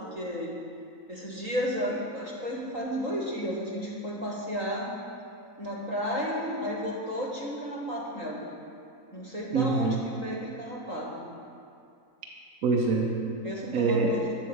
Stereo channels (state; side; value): late; left; 3.8 ms